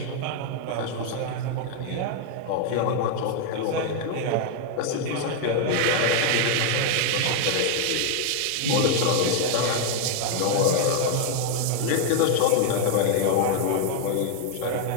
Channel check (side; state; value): both; different; correlation 0.00